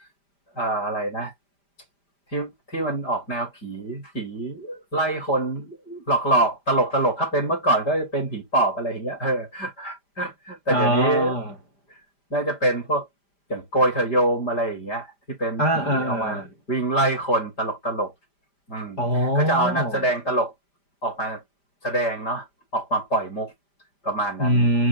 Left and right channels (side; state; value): right; late; 5.0 ms